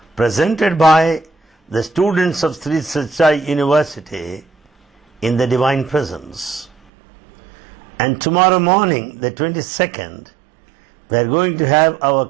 presented by the students of Sri Sathya Sai University in the Divine Presence. And tomorrow morning, the 22nd, we are going to have our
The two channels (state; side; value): drops out; left; at 6.7 s